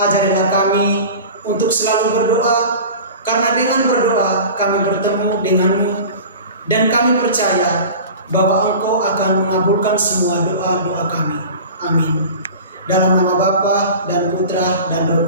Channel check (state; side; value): inverted; both; correlation -0.36